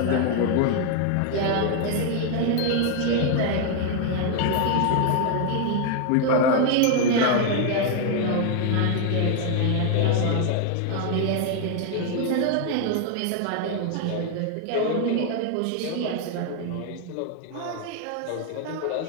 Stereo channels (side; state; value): both; different; correlation 0.00